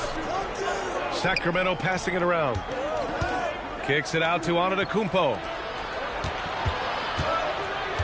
Sacramento passing it around. Kicks it out to Antetokounmpo.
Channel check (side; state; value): both; identical; correlation 1.00